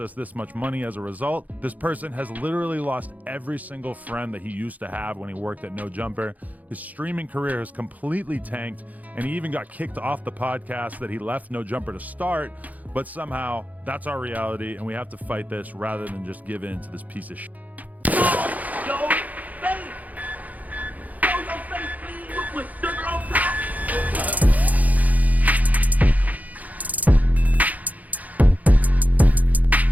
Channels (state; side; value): late; left; 0.077 ms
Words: us this much money as a result. This person has literally lost every single friend that he used to have when he worked at No Jumper. His streaming career has completely tanked, and he even got kicked off the podcast that he left No Jumper to start. But somehow, that's our reality, and we have to fight this rather than just give in to this piece of shit.